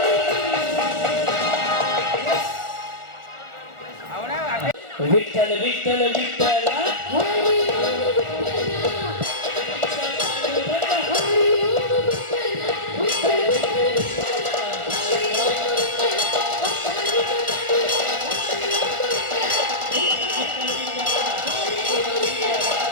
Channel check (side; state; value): left; late; 1.4 ms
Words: विठ्ठल विठ्ठल विठ्ठल